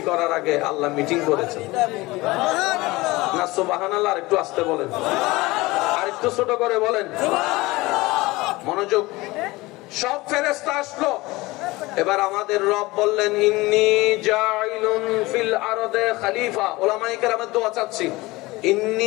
করার আগে আল্লাহ মিটিং করেছেন না? সুবহানাল্লাহ। আর একটু আস্তে বলেন, আর একটু ছোট করে বলেন। মনোযোগ। সব ফেরেশতা আসলো। এবার আমাদের রব বললেন, ইন্নী জাইলুন ফিল আরদে খলিফা। উলামায়ে কেরামের দোয়া চাচ্ছি।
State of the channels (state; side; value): quieter; right; 21.1 dB